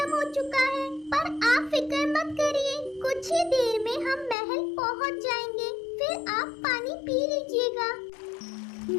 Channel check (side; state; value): right; drops out; at 4.4 s